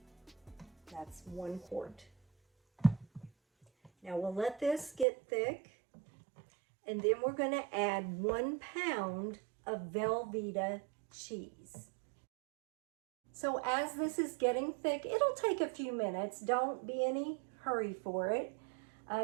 That's 1 quart. Now we'll let this get thick, and then we're going to add 1 pound of VELVEETA cheese. So as this is getting thick, it'll take a few minutes. Don't be any hurry for it.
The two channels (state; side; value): drops out; left; at 5.1 s